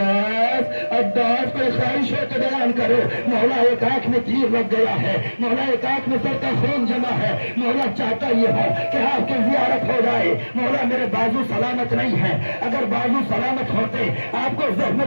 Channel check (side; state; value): both; inverted; correlation -1.00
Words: کوئی خواہش ہے تو بیان کرو. مولا ایک آنکھ میں تیر لگ گیا ہے, مولا ایک آنکھ میں سر کا خون جمع ہے, مولا چاہتا یہ ہے کہ آپ کی زیارت ہو جائے. مولا میرے بازو سلامت نہیں ہے, اگر بازو سلامت ہوتے آپ کو